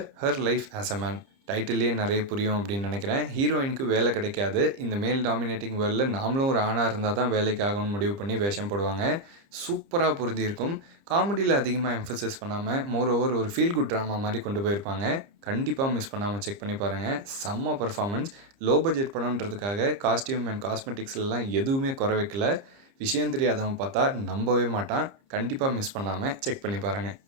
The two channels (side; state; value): left; late; 30 ms